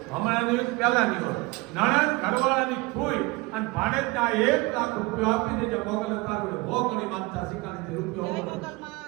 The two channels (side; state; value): left; quieter; 23.4 dB